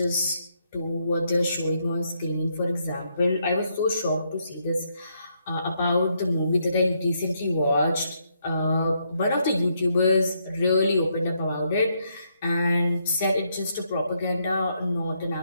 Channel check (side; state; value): both; inverted; correlation -0.76